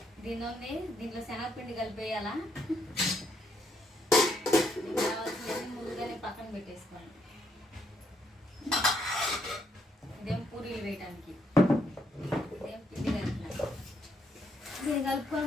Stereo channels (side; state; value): both; normal; correlation 0.74